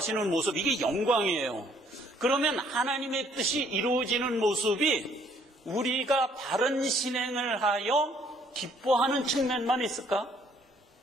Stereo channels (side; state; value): both; normal; correlation 0.64